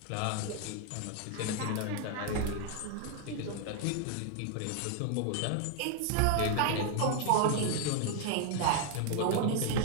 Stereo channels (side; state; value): both; different; correlation 0.00